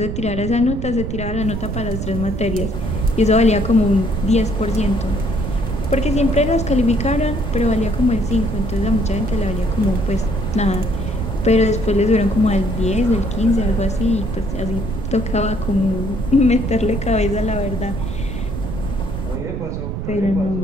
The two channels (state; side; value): noise; right; rumble, 5 dB below the sound